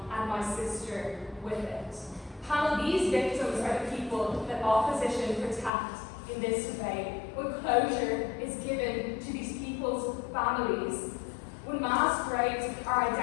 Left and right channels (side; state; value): right; drops out; at 5.7 s